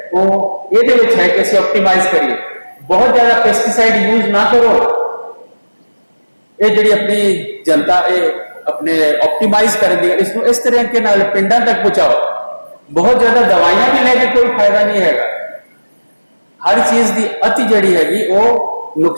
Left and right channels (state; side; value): inverted; both; correlation -1.00